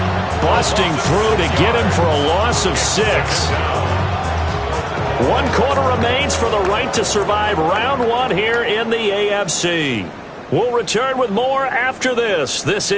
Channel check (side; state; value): both; identical; correlation 1.00